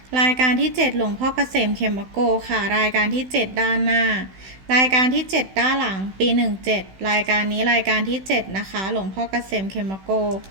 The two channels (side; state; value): left; late; 16 ms